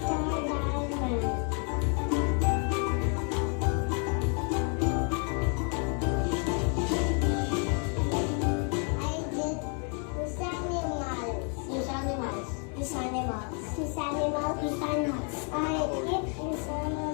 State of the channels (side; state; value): right; quieter; 39.7 dB